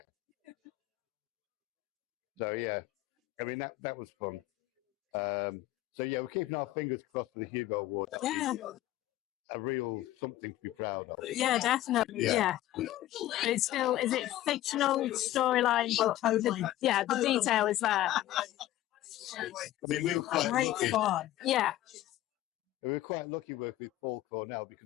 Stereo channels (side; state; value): right; quieter; 14.5 dB